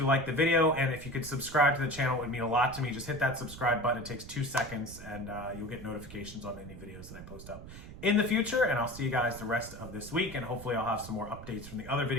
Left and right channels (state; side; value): noise; right; rumble, 14 dB below the sound